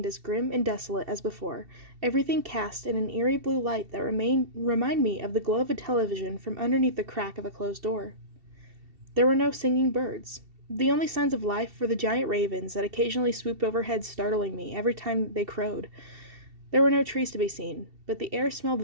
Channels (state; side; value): late; left; 2.7 ms